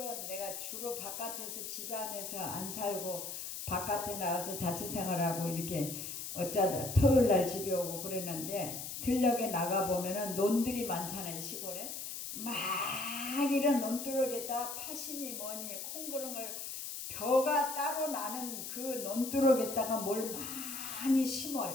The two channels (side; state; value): left; noise; hiss, 7 dB below the sound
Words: 내가 주로 바깥에서 집 안에서 안 살고 바깥에 나가서 자취생활하고 이렇게 어쩌다 토요일날 집에 오고 그랬는데 들녘에 나가보면은 논들이 많잖아요. 시골에 막 이런 논두렁에다 파시니 뭐니 콩그렁을 벼가 따로 나는 그 논두렁에다가 뭘 많이